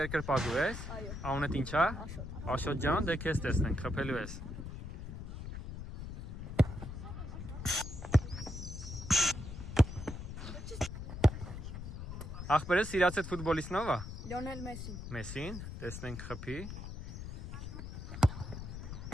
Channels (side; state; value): left; noise; rumble, 8 dB below the sound